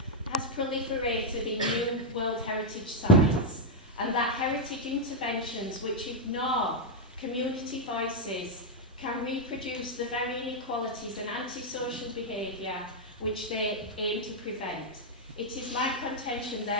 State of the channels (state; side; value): normal; both; correlation -0.01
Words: has proliferated in new World Heritage sites, and that heritage interventions which ignore community voices can reproduce the very inequalities and antisocial behaviour which they aim to prevent. It is my contention,